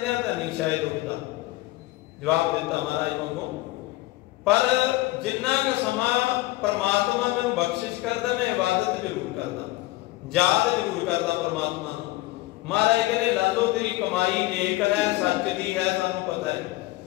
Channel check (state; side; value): quieter; right; 19.0 dB